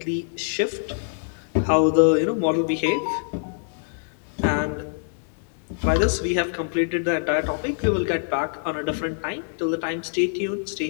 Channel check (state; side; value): silent; right; digital silence